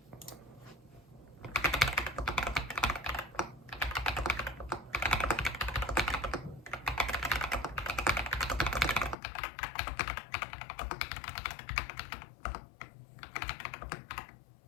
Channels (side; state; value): right; drops out; at 9.2 s